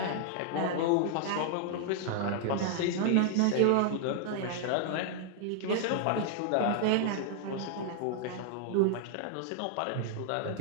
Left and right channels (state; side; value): different; both; correlation 0.00